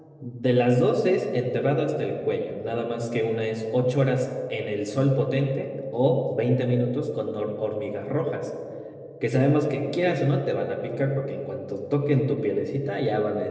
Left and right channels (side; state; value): both; identical; correlation 1.00